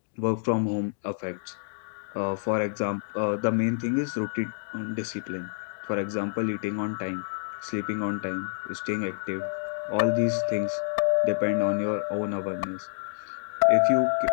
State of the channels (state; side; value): silent; right; digital silence